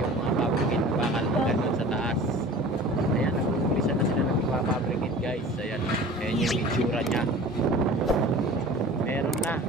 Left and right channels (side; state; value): both; normal; correlation 0.41